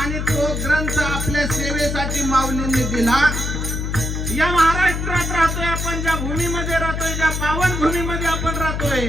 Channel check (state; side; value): noise; left; hum, 2 dB below the sound